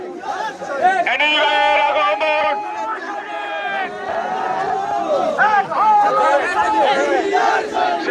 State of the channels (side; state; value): both; identical; correlation 1.00